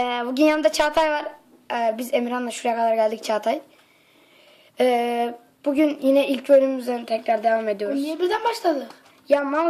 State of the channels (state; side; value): identical; both; correlation 1.00